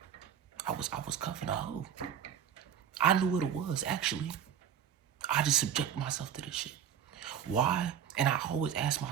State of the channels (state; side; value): quieter; left; 8.9 dB